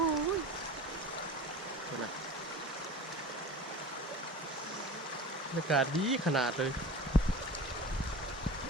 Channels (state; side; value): normal; both; correlation 0.36